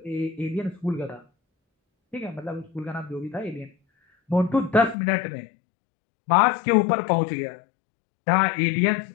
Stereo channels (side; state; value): right; drops out; at 5.0 s